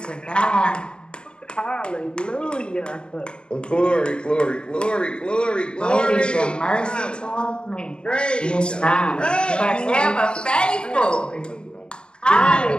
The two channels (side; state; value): right; late; 0.051 ms